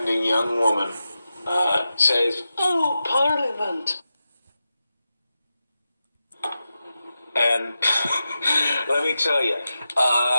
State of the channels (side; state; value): both; inverted; correlation -0.91